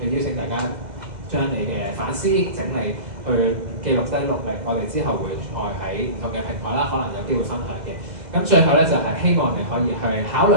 邀請大家將你嘅反思整理。去記錄低落嚟，我哋之後會再喺唔同嘅平台啦，可能有機會分享嘅。咁最後咧就係、希望你可以去考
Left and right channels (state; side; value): late; left; 2.0 ms